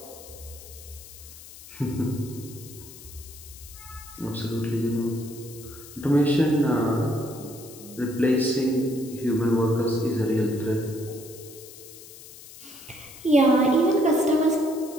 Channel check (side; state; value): left; noise; hiss, 17 dB below the sound